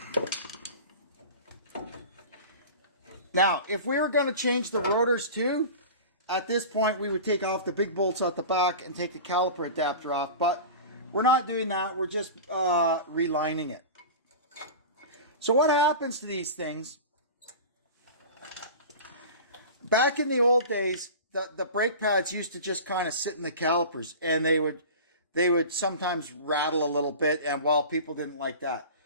Now, if we were going to change the rotors too, at this point we would take off the big bolts out the back and take the caliper adapter off, but we're not doing that. We're just relining it. So what happens to these things? Back in the old days, the brake pads used to just kind of sit in the calipers, and they would sometimes rattle a little bit, and well, people didn't like that.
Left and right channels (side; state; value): both; inverted; correlation -0.34